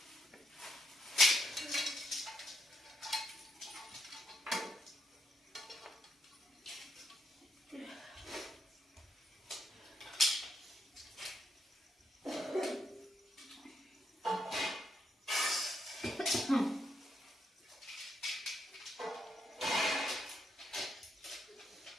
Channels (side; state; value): both; normal; correlation 0.77